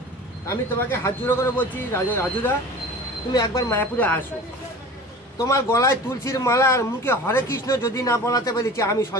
আমি তোমাকে হাত জোড়ো করে বলছি রাজুদা, তুমি একবার মায়াপুরে আসো। তোমার গলায় তুলসীর মালা আর মুখে হরে কৃষ্ণ যদি না বলাতে পেরেছি, আমি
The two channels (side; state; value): both; normal; correlation 0.38